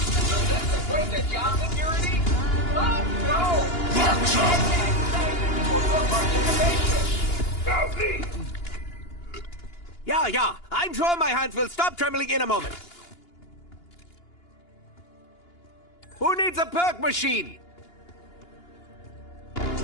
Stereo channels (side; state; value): right; late; 2.9 ms